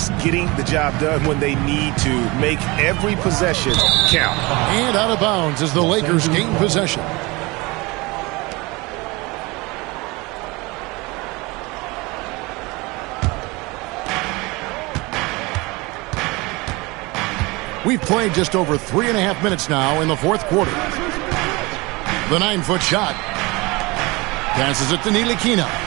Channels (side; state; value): left; quieter; 24.2 dB